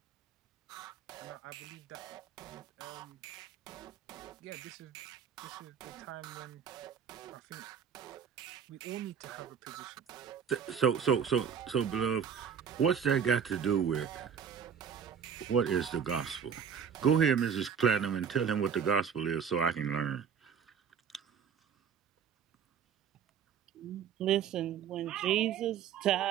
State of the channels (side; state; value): left; quieter; 7.5 dB